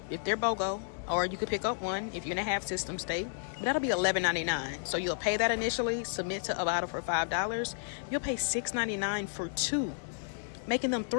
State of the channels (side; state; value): right; silent; digital silence